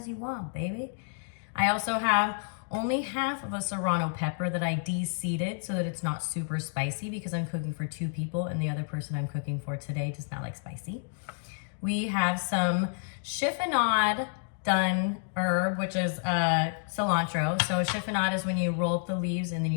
you want, baby. I also have only half of a serrano pepper that I de-seeded so that it's not super spicy because I'm cooking for two people and the other person I'm cooking for today does not like spicy. We have some chiffonade done herb, which is cilantro. So chiffonade is when you roll up the leaves and then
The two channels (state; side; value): silent; right; digital silence